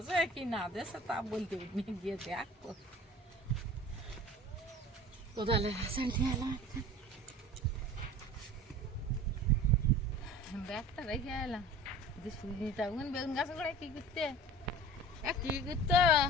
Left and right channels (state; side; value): normal; both; correlation 0.40